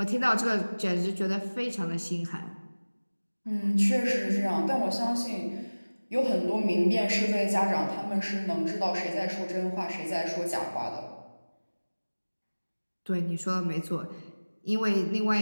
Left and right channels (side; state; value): both; inverted; correlation -1.00